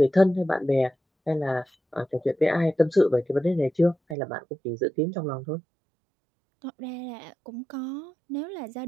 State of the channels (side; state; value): left; drops out; at 4.2 s